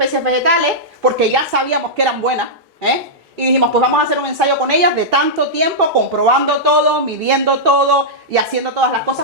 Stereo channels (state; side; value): normal; both; correlation -0.10